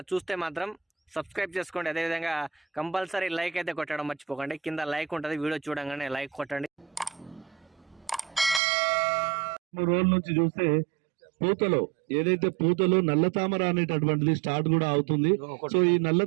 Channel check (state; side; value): drops out; left; at 8.6 s